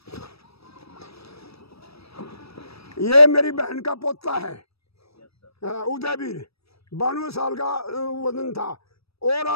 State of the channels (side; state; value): right; late; 0.78 ms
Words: ये मेरी बहन का पोता है उदयवीर, 92 साल का वजन था, और